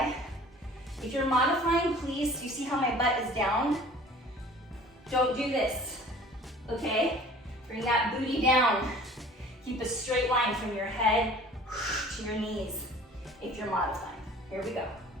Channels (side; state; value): both; normal; correlation 0.48